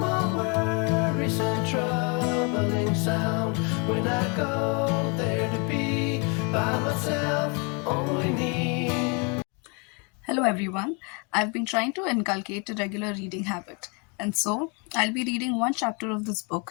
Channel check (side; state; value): right; quieter; 33.5 dB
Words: all worries and troubling sound. When I go there to be by myself, only me. Hello everyone. I've been trying to inculcate a regular reading habit, and so I'll be reading one chapter of this